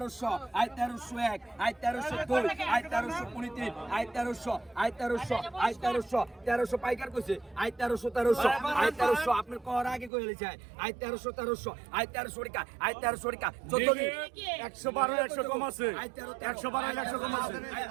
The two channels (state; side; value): drops out; left; at 10.1 s